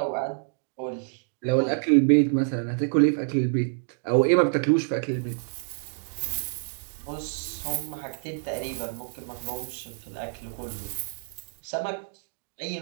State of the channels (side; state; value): left; silent; digital silence